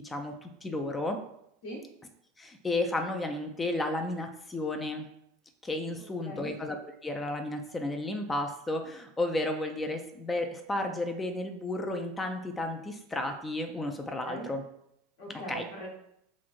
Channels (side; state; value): both; normal; correlation 0.62